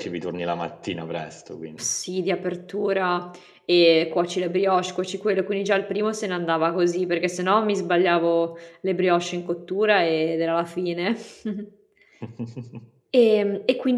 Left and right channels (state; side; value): identical; both; correlation 1.00